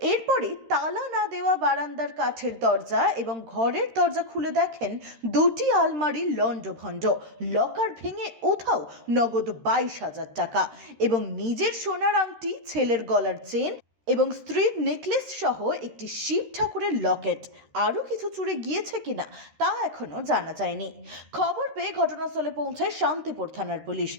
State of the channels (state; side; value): late; left; 13 ms